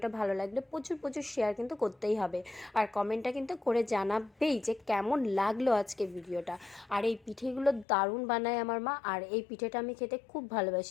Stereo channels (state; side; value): drops out; right; at 7.9 s